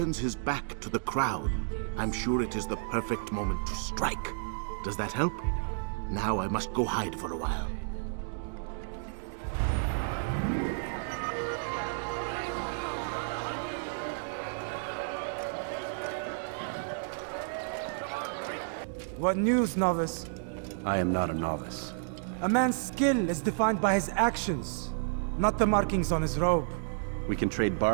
his back to the crowd. I'm sure it is the perfect moment to strike. Does that help? Now I must go hide for a while. Praise be Salahadin! He has found the strength to stand in defense of our great city. What news, novice? I am not a novice. A man's skill is defined by his actions, not the markings on his robe. We can trade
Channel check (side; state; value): left; silent; digital silence